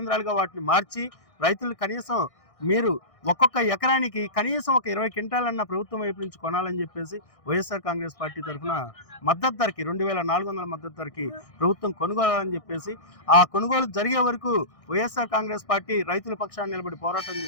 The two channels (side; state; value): right; late; 1.6 ms